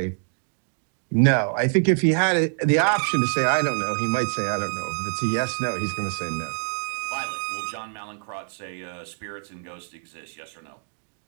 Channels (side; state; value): left; silent; digital silence